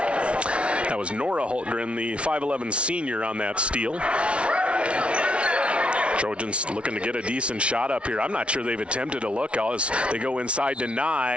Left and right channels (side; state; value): left; late; 0.060 ms